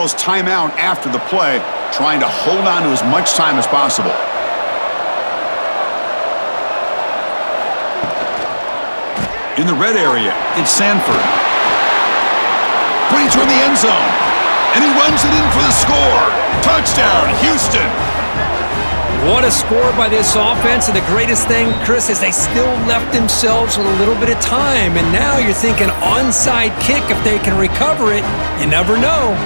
timeout after the play, trying to hold on to as much time as possible. In the red area, it's Sanford. Putting toward the end zone. And he runs it in for the score. Touchdown, Houston. What a score by this offense. And the greatest thing, Chris, is they still left themselves with a little bit of time. And now you're thinking onside kick if they can recover it. You never know.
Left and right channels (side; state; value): both; inverted; correlation -1.00